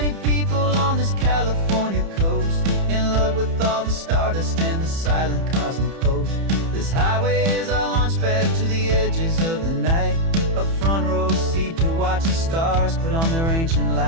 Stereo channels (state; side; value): late; left; 30 ms